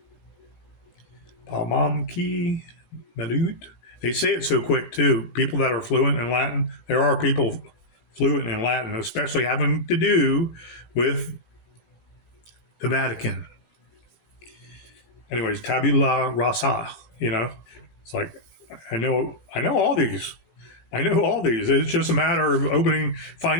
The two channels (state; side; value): late; right; 18 ms